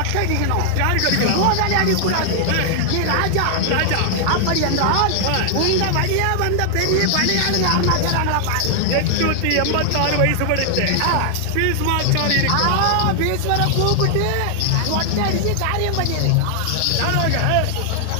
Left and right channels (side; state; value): both; different; correlation 0.00